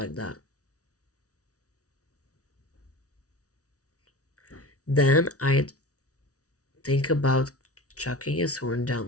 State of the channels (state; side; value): late; right; 0.67 ms